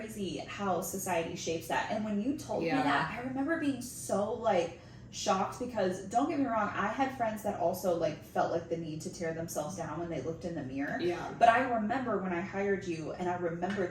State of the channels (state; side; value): identical; both; correlation 1.00